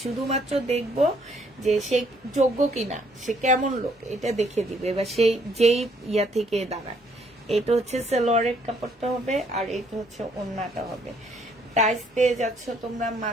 শুধুমাত্র দেখবো যে সে যোগ্য কিনা, সে কেমন লোক, এটা দেখে দিবে, বা সেই যেই ইয়া থেকে দাঁড়ায়। এটা হচ্ছে সালোয়ারের কাপড়টা হবে, আর এটা হচ্ছে ওড়নাটা হবে। প্রাইস পেয়ে যাচ্ছ তোমরা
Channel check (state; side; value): normal; both; correlation 0.66